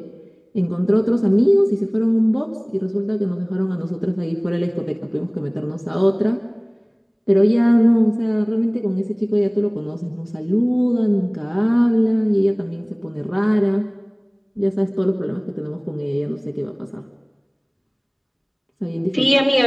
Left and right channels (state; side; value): identical; both; correlation 1.00